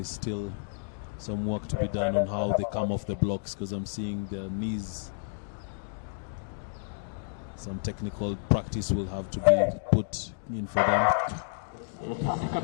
still some work to be done on how they come off the blocks, because I'm seeing their knees. Some technical practice will have to be put in for them.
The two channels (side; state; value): right; silent; digital silence